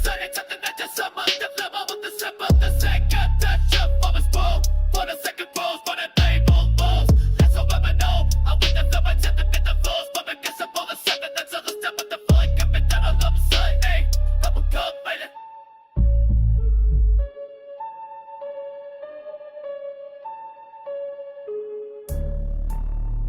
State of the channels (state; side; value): identical; both; correlation 1.00